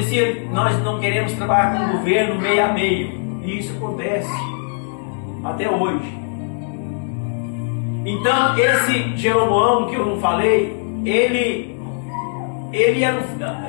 Nós não queremos trabalhar com o governo meio a meio, e isso acontece até hoje. Então esse Jeroboão que eu não falei,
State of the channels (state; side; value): silent; right; digital silence